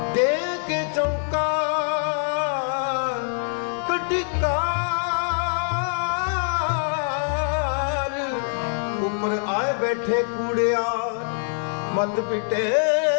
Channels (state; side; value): silent; right; 57 dB below the other